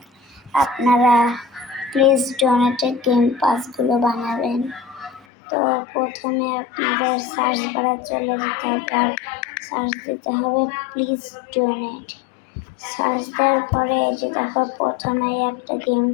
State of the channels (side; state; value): right; drops out; at 5.2 s